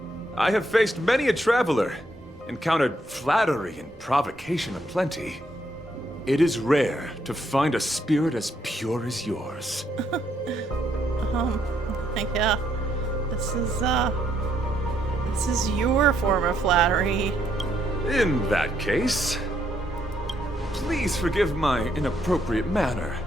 I have faced many a traveler, encountered flattery and provocation aplenty. It is rare to find a spirit as pure as yours. Yeah. This is your form of flattery. In that case, please forgive my inappropriate manner.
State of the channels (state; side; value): normal; both; correlation 0.74